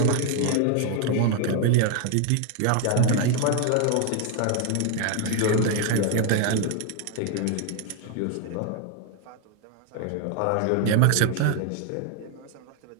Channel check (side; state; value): both; different; correlation 0.01